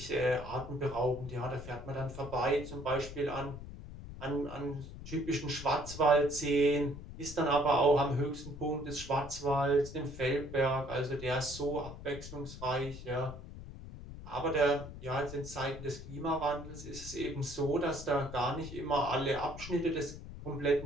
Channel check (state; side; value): noise; left; rumble, 12 dB below the sound